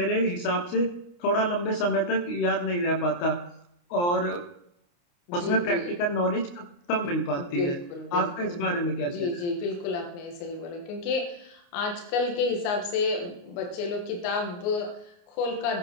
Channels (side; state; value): right; late; 29 ms